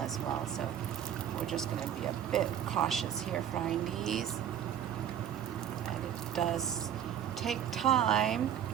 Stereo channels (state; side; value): quieter; left; 9.8 dB